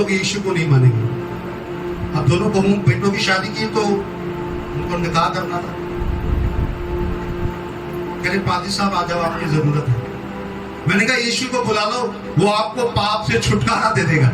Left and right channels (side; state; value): both; identical; correlation 1.00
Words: यीशु को नहीं मानेंगे। अब दोनों बहुओं बेटों की शादी की तो उनको निकाह करना था। कह रहे पादी साहब आ जाओ, आपकी जरूरत है। मैंने कहा यीशु को बुला लो, वो आपको पाप से छुटकारा दे देगा।